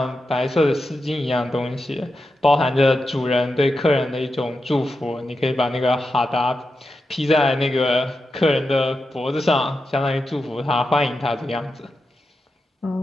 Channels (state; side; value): normal; both; correlation 0.89